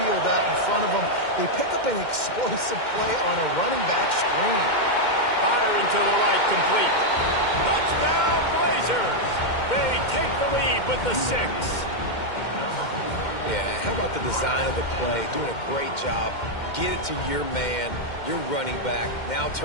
out in front of him. They pick up an explosive play on a running back screen. Firing to the right, complete. Touchdown, Blazers! with the 6. Yeah, how about the design of the play? Doing a great job. Get it to your man, your running back, now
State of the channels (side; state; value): right; late; 2.1 ms